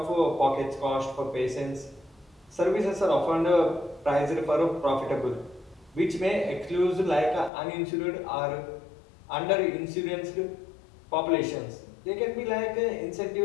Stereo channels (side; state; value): right; drops out; at 7.5 s